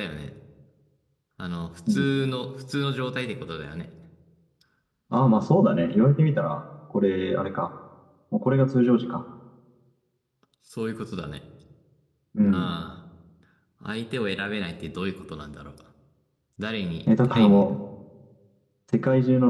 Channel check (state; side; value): identical; both; correlation 1.00